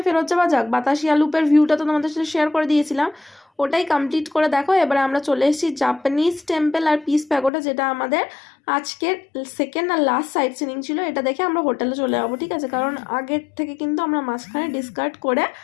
ফেরত যাওয়া যাক। বাতাসিয়া লুপের ভিউটা তো তোমাদের সাথে শেয়ার করে দিয়েছিলাম, ওটাই কমপ্লিট করে দেখো। এবারে আমরা চলে এসেছি জাপানিজ টেম্পল আর পিস প্যাগোডা, যেটা আমাদের আজকের সেকেন্ড আর লাস্ট সাইট সিনিং ছিল। এটা দেখে আমরা হোটেলে চলে যাবো, ঠিক আছে? কারণ আগের থেকে কিন্তু আমরা মাঝখানে ডিসকার্ড করে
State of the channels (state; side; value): drops out; right; at 7.5 s